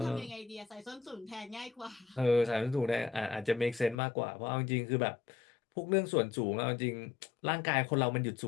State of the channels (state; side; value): drops out; right; at 4.0 s